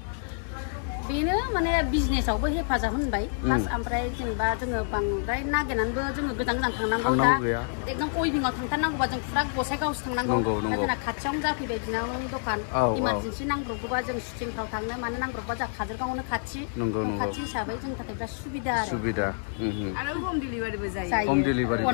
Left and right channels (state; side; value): silent; right; 59 dB below the other